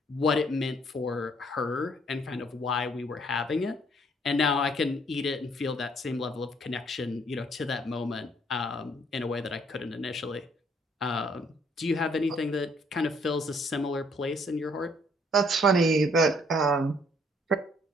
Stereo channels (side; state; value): both; normal; correlation 0.64